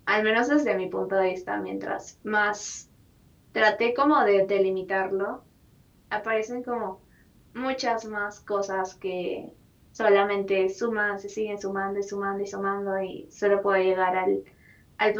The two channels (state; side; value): identical; both; correlation 1.00